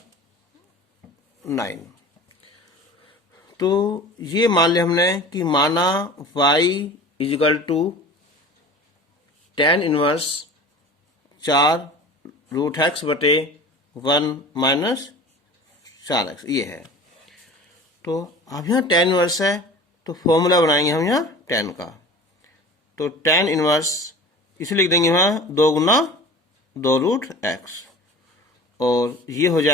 9। तो ये मान लिया हमने कि माना y is equal to tan inverse 4 root x बटे 1 माइनस 4x ये है। तो अब यहाँ tan इनवर्स है तो फॉर्मूला बनाएंगे हम यहाँ tan का, तो tan इनवर्स इसे लिख देंगे यहाँ 2 गुना 2 रूट एक्स, और ये हो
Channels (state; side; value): normal; both; correlation 0.39